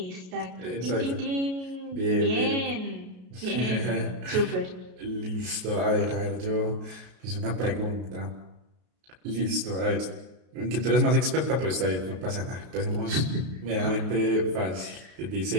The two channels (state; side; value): late; left; 33 ms